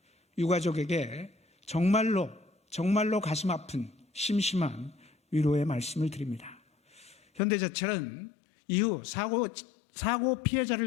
유가족에게 정말로 가슴 아픈 심심한 위로의 말씀을 드립니다. 현대제철은 이후 사고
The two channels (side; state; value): right; drops out; at 7.4 s